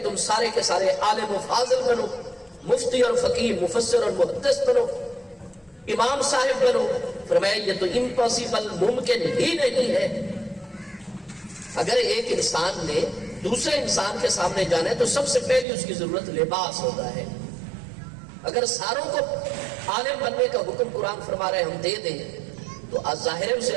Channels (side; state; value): left; drops out; at 15.7 s